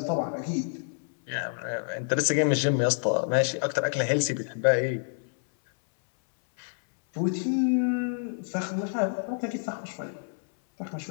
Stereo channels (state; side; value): silent; right; 59 dB below the other